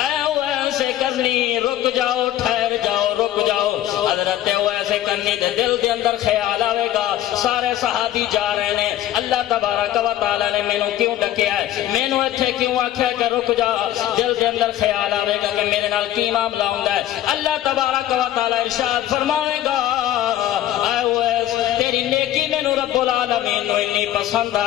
اویس کرنی رک جاؤ ٹھہر جاؤ رک جاؤ حضرت اویس کرنی دے دل دے اندر خیال آئے گا سارے صحابی جا رہے ہیں اللہ تبارک و تعالی نے مینوں کیوں ڈکیا ہے مینوں ایتھے کیوں آکھیا کہ رک جا دل دے اندر خیال آئے گا کہ میرے نال کی معاملہ ہوندا ہے اللہ تبارک و تعالی ارشاد فرمائے گا اے اویس تیری نیکی مینوں رب العالمین نو اتنی پسند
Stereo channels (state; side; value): quieter; right; 12.7 dB